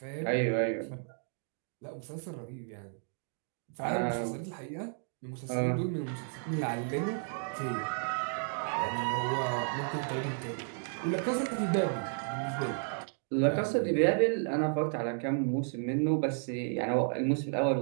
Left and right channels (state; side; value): silent; left; 56 dB below the other